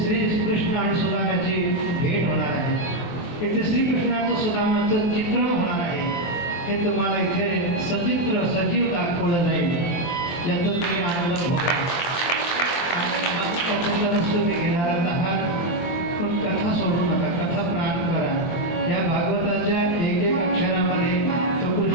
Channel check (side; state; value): right; late; 23 ms